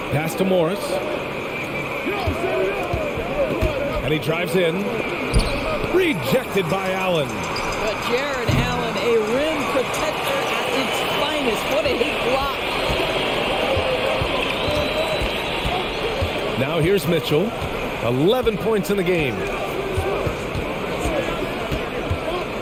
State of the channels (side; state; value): both; identical; correlation 1.00